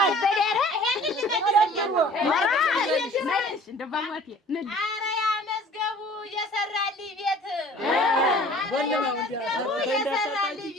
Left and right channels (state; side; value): normal; both; correlation 0.49